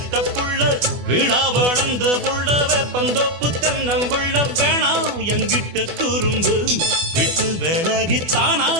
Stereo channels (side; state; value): left; late; 24 ms